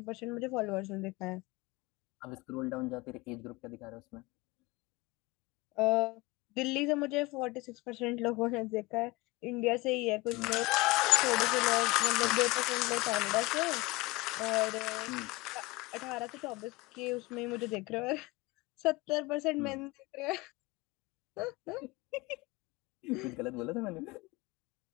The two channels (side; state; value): right; quieter; 22.4 dB